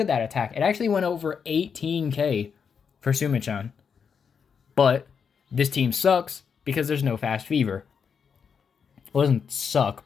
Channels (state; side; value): quieter; right; 6.5 dB